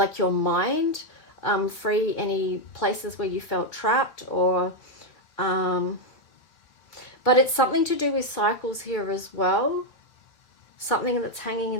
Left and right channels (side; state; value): right; late; 3.0 ms